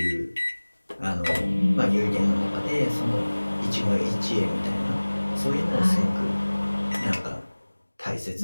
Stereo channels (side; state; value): both; inverted; correlation -1.00